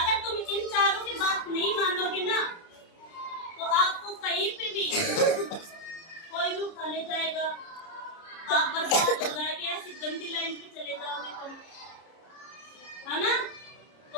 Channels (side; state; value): right; late; 30 ms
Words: तुम इन चारों की बात नहीं मानोगे ना तो आपको कहीं पे भी कोई भी उठा ले जाएगा, आप बर्बाद हो जाएंगे, ऐसी गंदी लाइन पे चले जाओगे तुम, है ना?